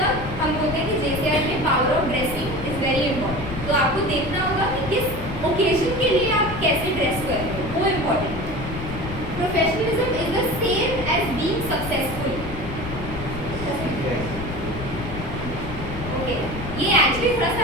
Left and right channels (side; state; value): left; noise; rumble, 8 dB below the sound